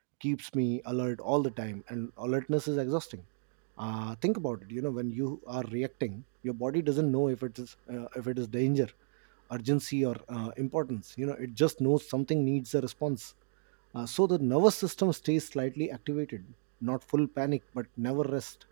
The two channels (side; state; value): left; silent; digital silence